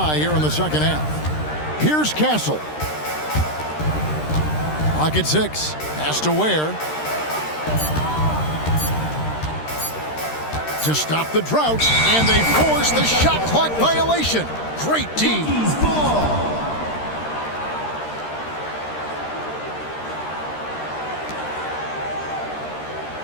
here in the second half. Here's Castle. Clock at 6. Pass to Ware. To stop the drought, and they force the shot clock violation. Great D.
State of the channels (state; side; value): late; right; 13 ms